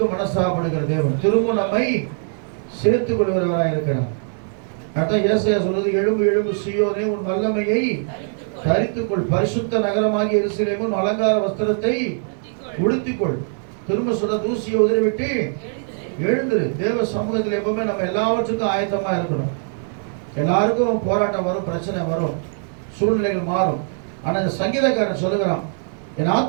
மனசாகப்படுகிற தேவன் திரும்ப நம்மை சேர்த்துக் கொள்கிறவராக இருக்கிறார். அதான் ஏசாயா சொல்றது, எழும்பு எழும்பு சீயோனே, உன் வல்லமையை தரித்துக்கொள், பரிசுத்த நகரமாகிய எருசலேம் உன் அலங்கார வஸ்திரத்தை உடுத்திக்கொள். திரும்ப சொல்ற, தூசியை உதறிவிட்டு எழுந்துரு. தேவ சமூகத்தில் எப்பவுமே நம்ம எல்லாவற்றுக்கும் ஆயத்தமா இருக்கணும். எல்லாருக்கும் போராட்டம் வரும், பிரச்சனை வரும், சூழ்நிலைகள் மாறும். ஆனா இந்த சங்கீதக்காரன் சொல்லுகிறான், என்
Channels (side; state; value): left; silent; 60 dB below the other